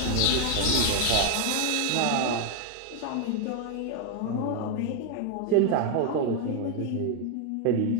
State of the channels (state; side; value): different; both; correlation 0.01